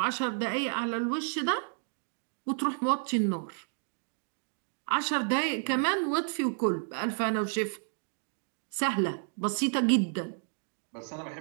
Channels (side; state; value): left; silent; 57 dB below the other